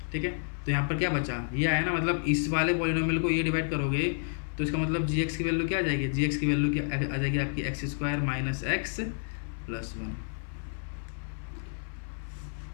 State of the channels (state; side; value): silent; right; 58 dB below the other